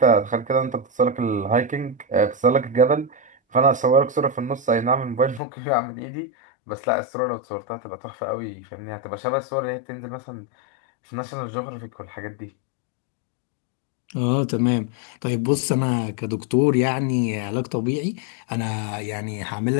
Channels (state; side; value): drops out; right; at 5.4 s